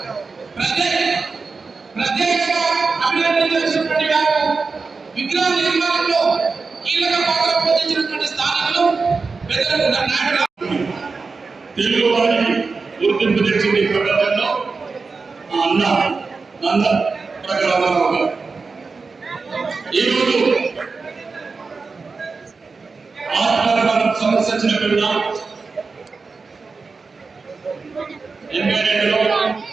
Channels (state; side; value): quieter; left; 4.4 dB